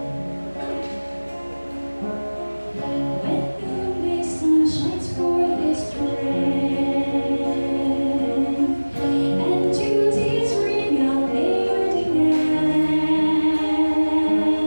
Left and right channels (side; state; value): both; inverted; correlation -1.00